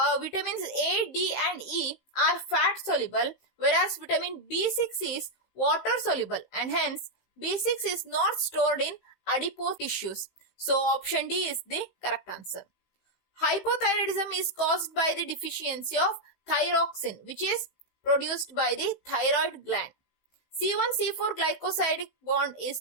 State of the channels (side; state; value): right; late; 16 ms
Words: Vitamins A, D and E are fat soluble, whereas vitamin B6 is water soluble, and hence B6 is not stored in adipose tissues. So option D is the correct answer. Hypothyroidism is caused by the deficiency of thyroxine, which is produced by the thyroid gland. C1-C4 glycosidic bond